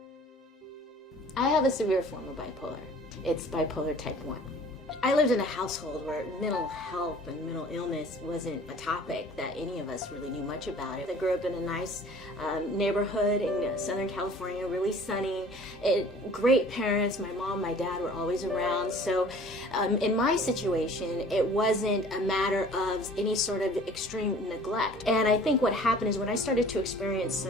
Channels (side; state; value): both; normal; correlation 0.48